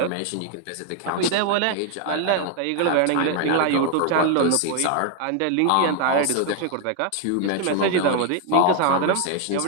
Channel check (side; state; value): both; different; correlation 0.00